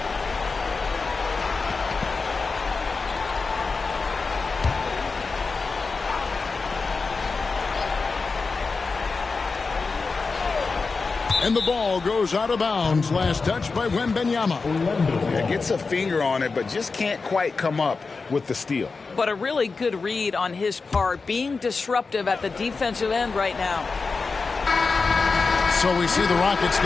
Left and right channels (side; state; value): right; quieter; 4.3 dB